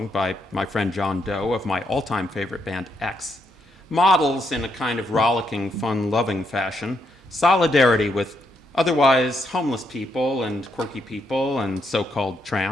by my friend John Doe of my all-time favorite band X models in a kind of rollicking, fun-loving fashion solidarity with Otherwise, homeless people and quirky people and so-called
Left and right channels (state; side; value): normal; both; correlation 0.78